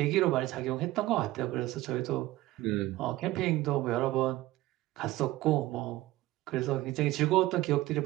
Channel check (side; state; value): left; quieter; 17.2 dB